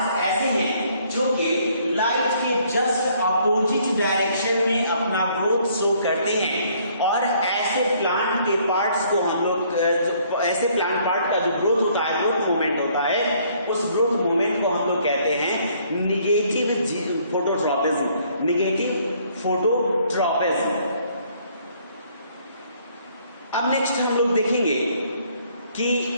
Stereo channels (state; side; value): inverted; both; correlation -0.64